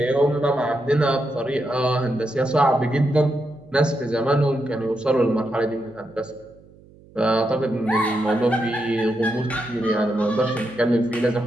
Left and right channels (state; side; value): noise; right; hum, 25 dB below the sound